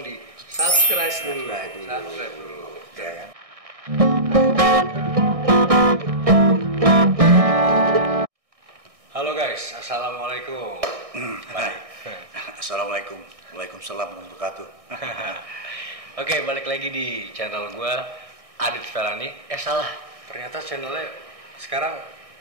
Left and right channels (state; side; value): late; left; 1.6 ms